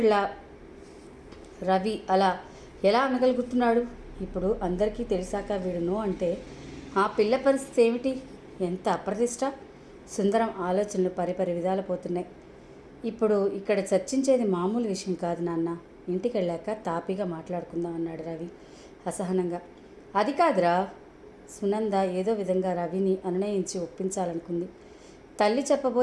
రవి అలా ఎలా అనగలుగుతున్నాడు? ఇప్పుడు అందరికీ తెలిసాక వీడు నో అంటే ఆ పిల్ల పరిస్థితి ఏమిటి? ఎంత అప్రతిష్ట! సుందరం ఆలోచనలు పరిపరి విధాలు పోతున్నాయి. ఇప్పుడు ఇక్కడ చర్చించేది మామూలు విషయం కాదు నాన్న. ఇంటికి వెళ్ళాక తాపీగా మాట్లాడుకుందాం అన్నాడు రవి అసహనంగా. అది కాదురా. సునంద ఏదో విధంగా రవిని అనునయించి ఒప్పించాలనుకుంది. తల్లి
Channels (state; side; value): identical; both; correlation 1.00